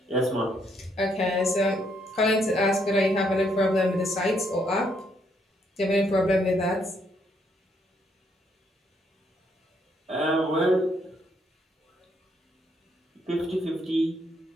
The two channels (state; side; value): normal; both; correlation 0.72